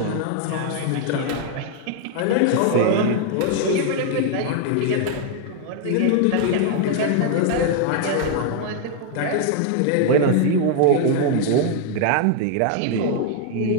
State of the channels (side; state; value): both; different; correlation 0.00